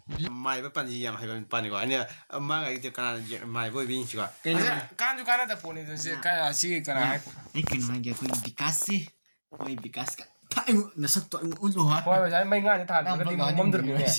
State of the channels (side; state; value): both; inverted; correlation -1.00